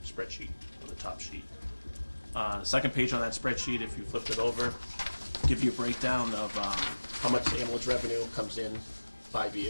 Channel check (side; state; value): both; inverted; correlation -1.00